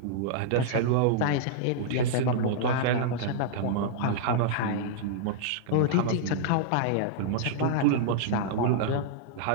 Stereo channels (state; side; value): different; both; correlation -0.02